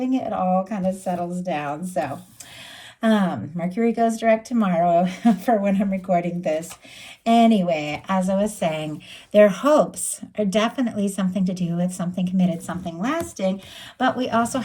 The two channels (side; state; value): both; identical; correlation 1.00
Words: it all kind of settles down. So Mercury goes direct tomorrow for when I'm recording this. Anyway, as I was saying, their hopes are definitely something to do with something committed, something lasting, but we also